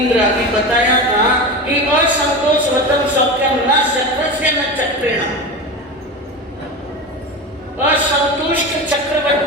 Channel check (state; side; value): normal; both; correlation 0.25